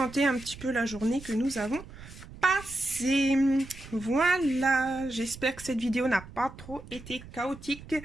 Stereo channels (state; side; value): noise; right; rumble, 16 dB below the sound